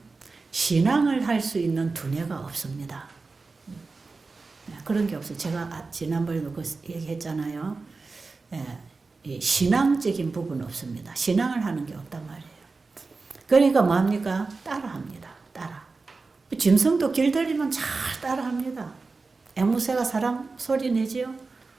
신앙을 할 수 있는 두뇌가 없습니다. 그런 게 없어요. 제가 지난번에도 그 얘기했잖아요. 이 신앙적인 부분은 없습니다. 신앙을 하는 게 없단 말이에요. 그러니까 뭐합니까? 따라합니다. 따라. 짐승도 길들이면 잘 따라합니다. 앵무새가 사람 소리 내지요?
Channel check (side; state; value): left; quieter; 4.0 dB